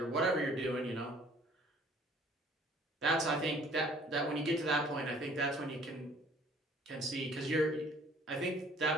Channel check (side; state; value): both; normal; correlation 0.56